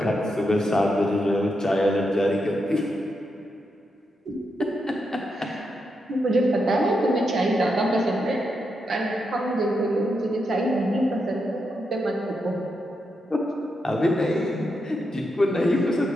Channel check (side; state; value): both; normal; correlation 0.84